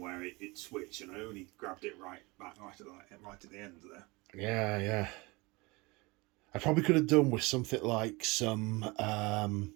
it switched, and I only grabbed it right at the end there. Yeah, yeah. I probably could have done with something like some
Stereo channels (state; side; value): quieter; left; 24.6 dB